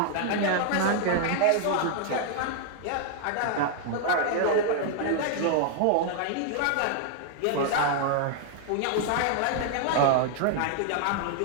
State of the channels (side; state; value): both; different; correlation 0.00